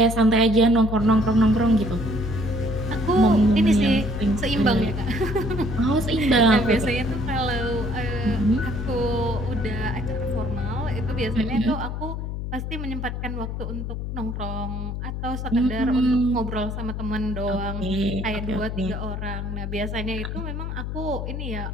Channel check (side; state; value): left; noise; hum, 5 dB below the sound